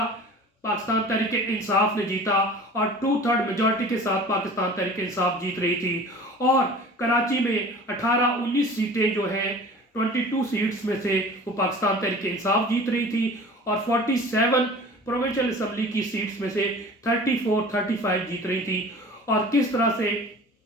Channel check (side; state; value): both; normal; correlation 0.42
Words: पाकिस्तान तहरीक इंसाफ ने जीता, और 2/3 मेजॉरिटी के साथ पाकिस्तान तहरीक इंसाफ जीत रही थी। और कराची में 18-19 सीटें जो हैं, 22 सीट्स में से वो पाकिस्तान तहरीक इंसाफ जीत रही थी, और 47 प्रोविंशियल असम्बली की सीट्स में से 34-35 जीत रही थी। और किस तरह से